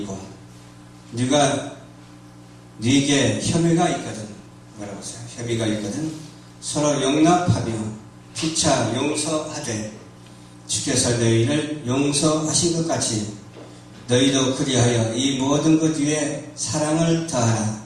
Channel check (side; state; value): both; identical; correlation 1.00